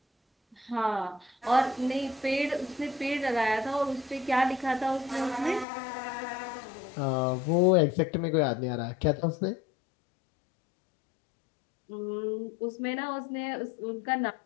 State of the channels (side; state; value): right; drops out; at 5.7 s